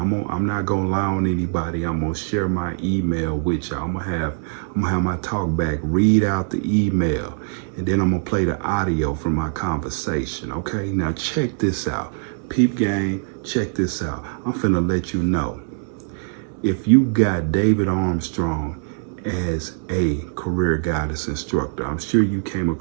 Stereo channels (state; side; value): silent; left; digital silence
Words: I'm not gonna lie on anybody. I'm gonna share my email with y'all. I'm gonna have my talk back, read out the email, and then I'm gonna play the audio from my conversation. Okay? Now check this out. Peep gang, check this out. I'm finna let you know. If you got David Armstrong as a career guidance instructor, I'm sure you came